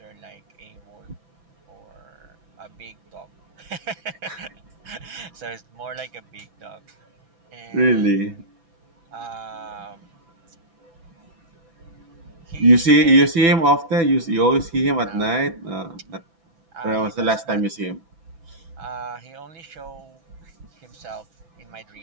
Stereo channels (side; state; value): left; late; 6.0 ms